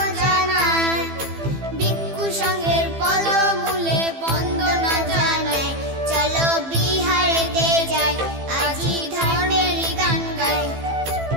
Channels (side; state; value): left; late; 15 ms